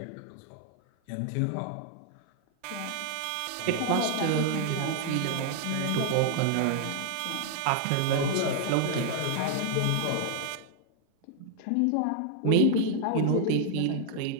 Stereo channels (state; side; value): different; both; correlation -0.01